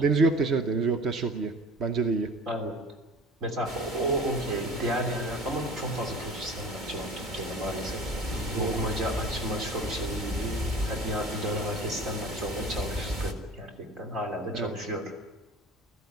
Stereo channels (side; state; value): both; normal; correlation 0.41